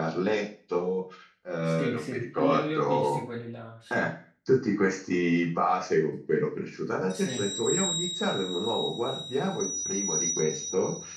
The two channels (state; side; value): identical; both; correlation 1.00